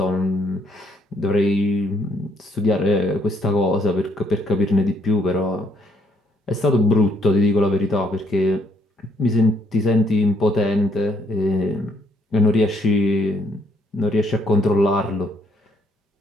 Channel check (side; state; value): both; normal; correlation 0.70